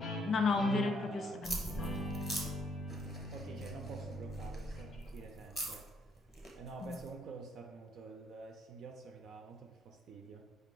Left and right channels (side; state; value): both; normal; correlation 0.70